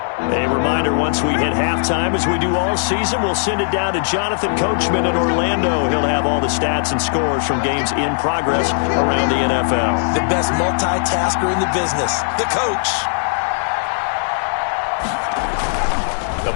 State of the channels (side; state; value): right; silent; digital silence